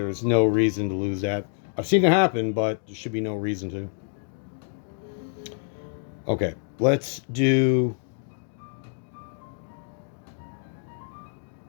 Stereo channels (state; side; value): silent; right; 60 dB below the other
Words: no reason to lose that. I've seen it happen, but there should be no reason to. Okay, let's do...